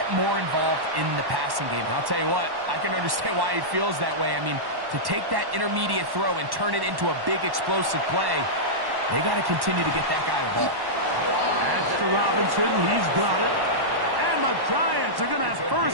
more involved in the passing game. And I'll tell you what, I can understand why he feels that way. I mean, to take that intermediate throw and turn it into a big explosive play, they got to continue to get that guy the ball. That's to Robinson. He's got it. And the Giants are going to have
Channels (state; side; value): late; left; 1.1 ms